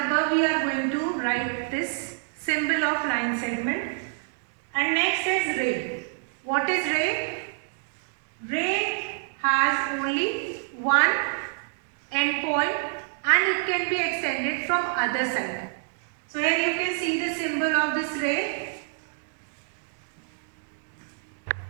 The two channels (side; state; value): left; silent; digital silence